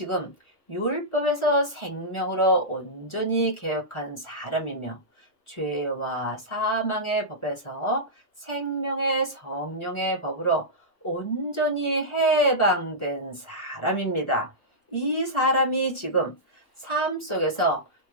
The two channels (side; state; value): right; late; 1.4 ms